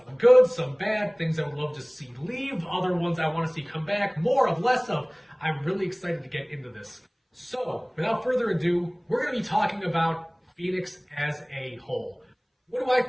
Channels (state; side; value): identical; both; correlation 1.00